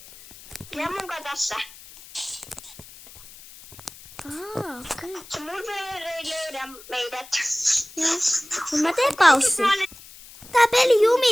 Ja munkaan tässä. Okei. Se murderer ei löydä meidät. Joo. Mut mä teen paussi. Tää peli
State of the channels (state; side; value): noise; left; hiss, 19 dB below the sound